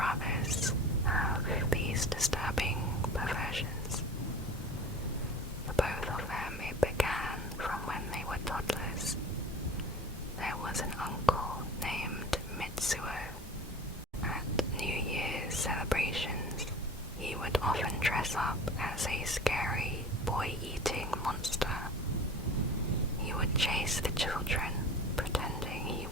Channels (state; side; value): normal; both; correlation 0.39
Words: have these disturbing perversions? For both of them, it began from when they were toddlers. There was an uncle named Mitsuo. At New Year's celebrations, he would often dress up as a scary boy-eating monster. He would chase the children, pretending he